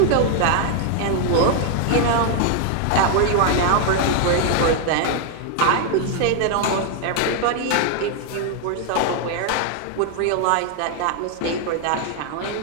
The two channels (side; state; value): both; different; correlation 0.00